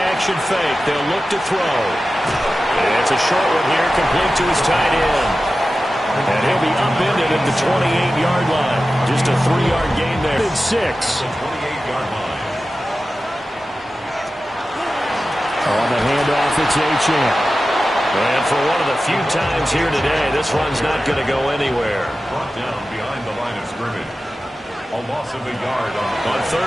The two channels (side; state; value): both; normal; correlation 0.94